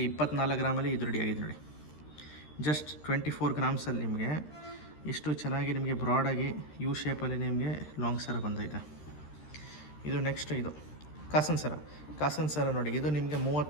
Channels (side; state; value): right; late; 13 ms